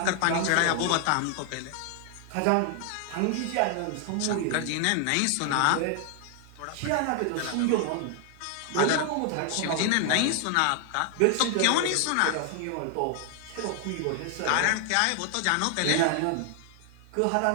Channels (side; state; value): both; different; correlation 0.00